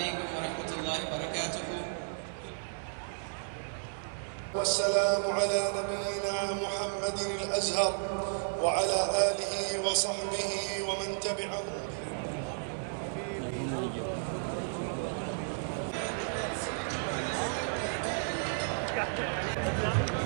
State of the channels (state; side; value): silent; left; 56 dB below the other